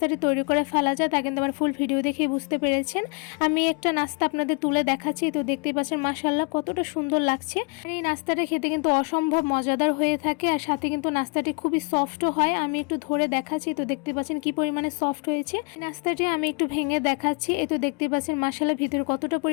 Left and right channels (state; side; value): quieter; right; 34.7 dB